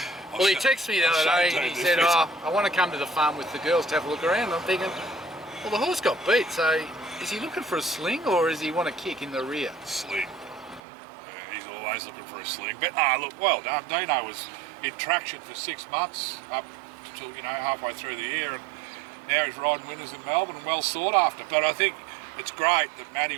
Well, he texted me the other day and he said, I want to come to the farm with the girls to have a look around. I'm thinking, well, the horse got beat, so is he looking for a sling, or does he want to kick in the rear? Sling. He's always looking for a sling. But look, well done. Dino was in traction for 6 months up till halfway through the year, and now he's riding winners in Melbourne and well sought after. But I think it's great that Matty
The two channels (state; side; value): drops out; left; at 10.8 s